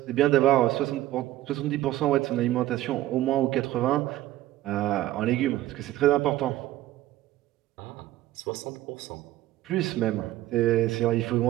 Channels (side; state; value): left; quieter; 14.9 dB